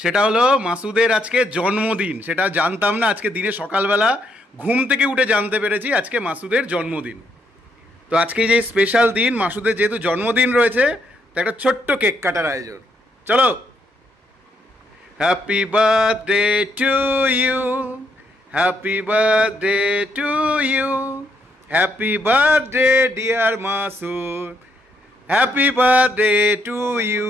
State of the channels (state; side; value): normal; both; correlation 0.75